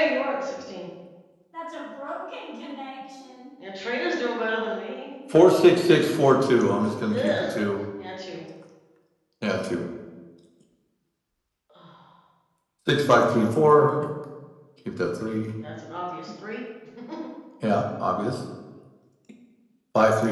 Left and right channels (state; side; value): identical; both; correlation 1.00